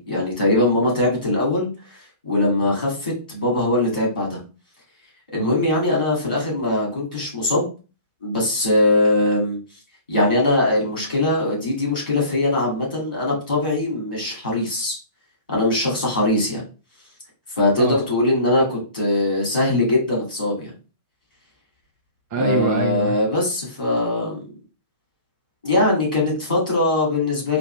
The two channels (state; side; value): inverted; both; correlation -0.45